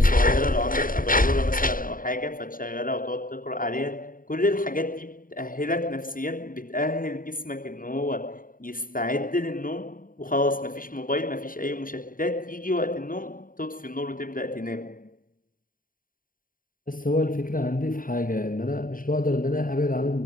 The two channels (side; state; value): right; late; 0.40 ms